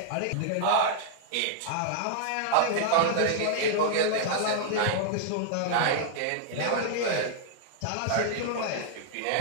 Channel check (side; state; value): both; different; correlation -0.01